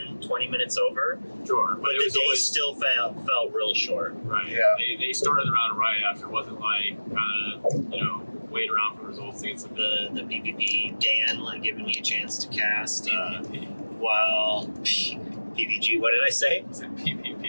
20 minutes over. Sure. But the day still felt real short. Right. Yeah. They started the round right after. It wasn't like kind of, wait around for results to get some. The PPP, Dan, like giving me a chance to cast. Well, PPG, what did I say? I said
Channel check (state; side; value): inverted; both; correlation -1.00